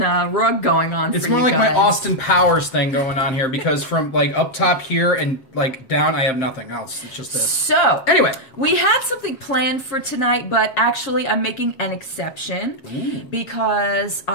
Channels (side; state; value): right; late; 7.3 ms